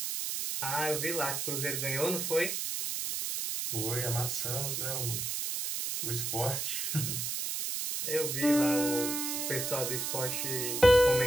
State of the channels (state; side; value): noise; right; hiss, 2 dB below the sound